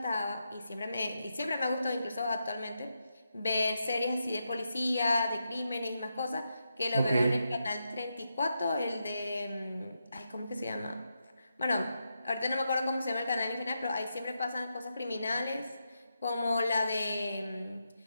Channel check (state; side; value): inverted; both; correlation -0.85